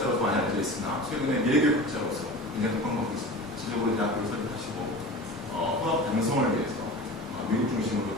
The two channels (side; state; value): both; normal; correlation 0.34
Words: 많이 알려져 있으나 최근에 미래교육학자로서 굉장히 독학하고 있습니다. 실제적으로 대학교를 설립하시고 화학 양성을 위해서 미국 중심으로